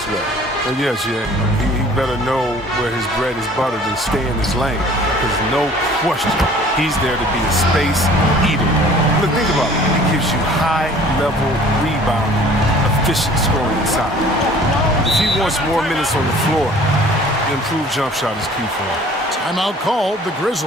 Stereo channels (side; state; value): both; normal; correlation 0.51